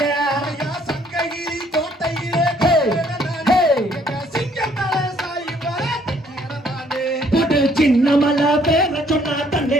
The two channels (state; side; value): normal; both; correlation 0.64